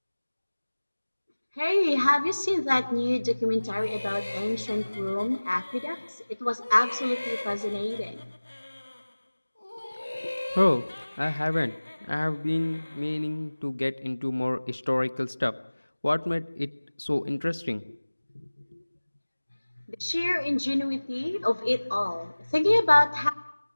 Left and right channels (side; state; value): both; inverted; correlation -1.00